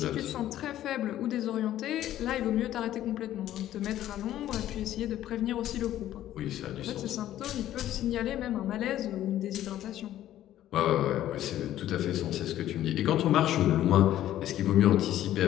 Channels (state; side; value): quieter; right; 12.8 dB